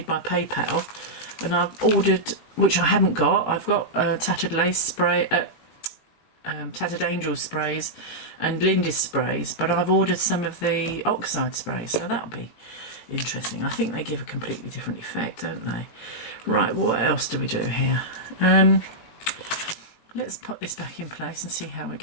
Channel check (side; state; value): right; late; 18 ms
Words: by PayPal, and I've ordered, which I haven't got. I've got Tattered Lace spray, Tattered Angel sprays and Lindy's sprays, but I've ordered some of the oxide sprays, so that'll be interesting. I think they give a completely different effect, don't they? Right, what else do we do here? Let's put this back in place and see how we're